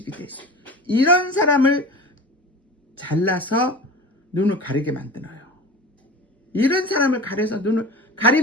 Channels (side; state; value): both; normal; correlation 0.35